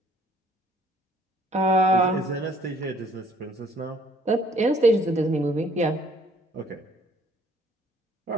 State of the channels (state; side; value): normal; both; correlation 0.61